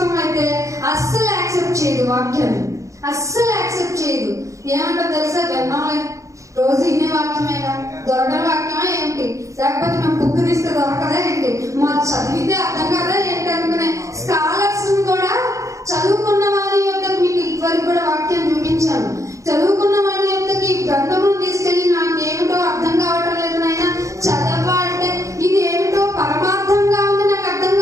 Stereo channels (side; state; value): left; late; 0.15 ms